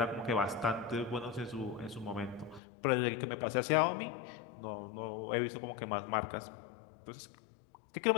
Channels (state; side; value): drops out; right; at 2.6 s